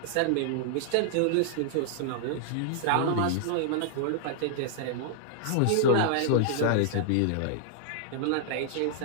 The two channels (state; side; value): different; both; correlation -0.01